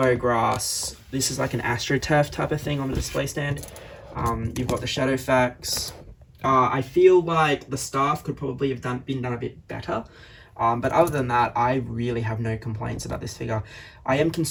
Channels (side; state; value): both; identical; correlation 1.00